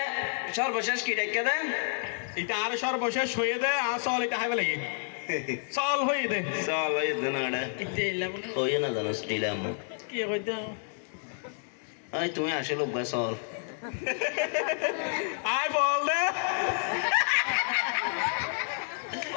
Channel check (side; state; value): right; silent; digital silence